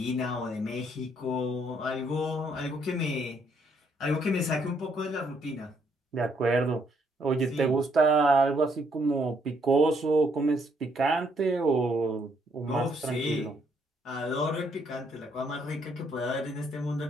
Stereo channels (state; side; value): normal; both; correlation 0.71